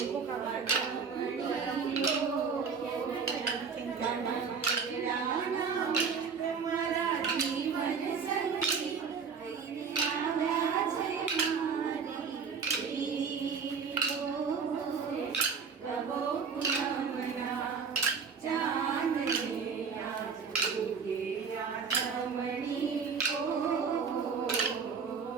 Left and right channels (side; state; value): left; quieter; 5.8 dB